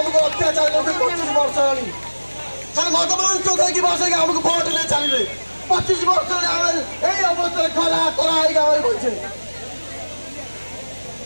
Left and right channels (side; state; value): both; inverted; correlation -1.00